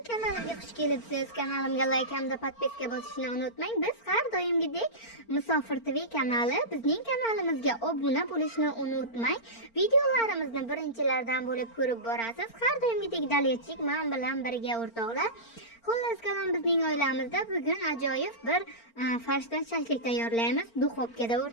kanalimga xush kelibsiz. Kanalimga like hamda podpiska bosishni unutmang. Biz har doimgidek Musofir TV kanali, bizning kanalimizga obuna bo'lishni unutmang. Videolarimizni birinchilardan bo'lib ko'rib borasiz. Har doimgidek Daliyachik men bilan birga o'rtoqlar. Xullas kalom, bizning oilamizda bugun ajoyib bir farshdan shashlik tayyorlaymiz. Duxovkada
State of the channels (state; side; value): late; right; 4.4 ms